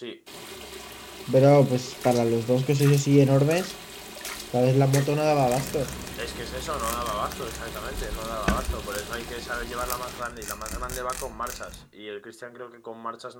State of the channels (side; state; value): both; identical; correlation 1.00